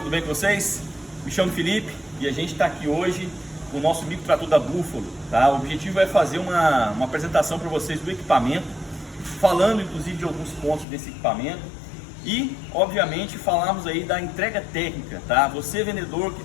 bem com vocês? Me chamo Felipe e a gente está aqui hoje com o nosso microtrator da Buffalo, tá? O objetivo é fazer uma apresentação para vocês do equipamento, falando inclusive de alguns pontos desse equipamento e, obviamente, falarmos aí da entrega técnica, tá? Você vendedor que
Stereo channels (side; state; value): right; drops out; at 10.9 s